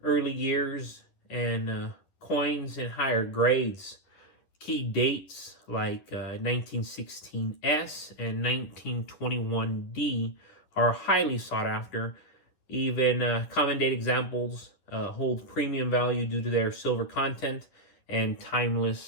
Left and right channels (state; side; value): late; right; 10 ms